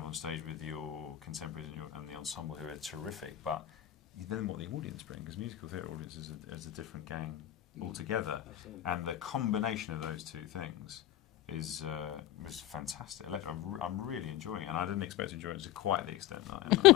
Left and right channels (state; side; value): quieter; right; 13.4 dB